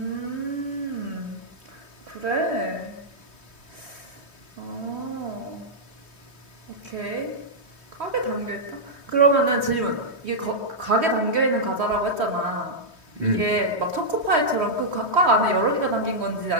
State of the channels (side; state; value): left; late; 3.2 ms